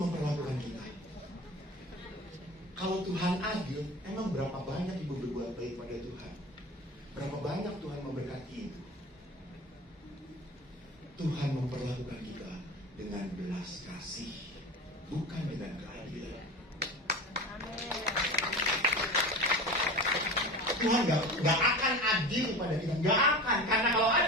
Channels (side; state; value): both; normal; correlation 0.32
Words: kita. Kalau Tuhan adil, emang berapa banyak ibu berbuat baik pada Tuhan? Berapa banyak Tuhan memberkati ibu? Tuhan memperlakukan kita dengan belas kasih, bukan dengan keadilan. Tuhan gak akan adil pada kita, gak akan. Karena kalau